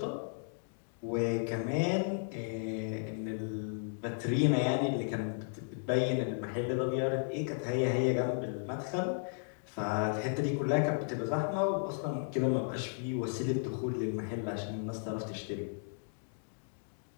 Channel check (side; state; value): right; silent; digital silence